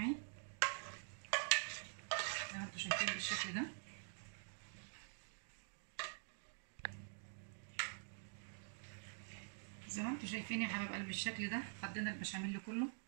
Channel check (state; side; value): silent; left; digital silence